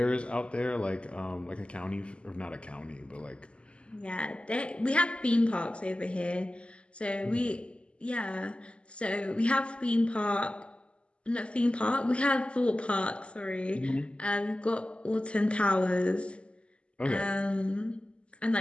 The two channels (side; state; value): right; late; 0.055 ms